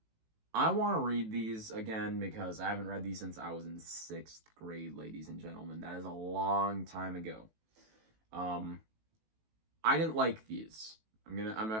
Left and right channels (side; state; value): left; late; 18 ms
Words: I want to read these again because I haven't read these since I was in 6th grade, ladies and gentlemen. That is a long time ago. I didn't like these. I'm